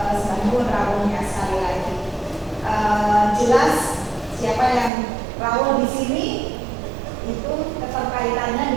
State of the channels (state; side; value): drops out; left; at 4.9 s